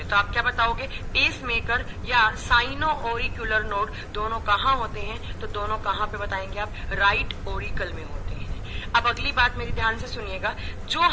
तो आप क्या बताओगे? पेस मेकर या साइनो ऑरिकुलर नोड दोनों कहाँ होते हैं? तो दोनों कहाँ पे बताएंगे आप? राइट ओरिकल में होते हैं। अब अगली बात मेरी ध्यान से सुनिएगा, जो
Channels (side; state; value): both; identical; correlation 1.00